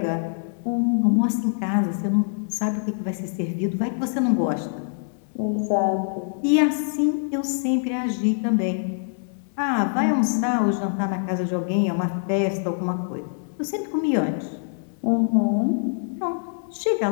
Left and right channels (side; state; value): right; silent; digital silence